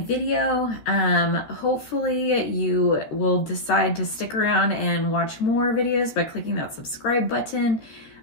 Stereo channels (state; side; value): late; right; 13 ms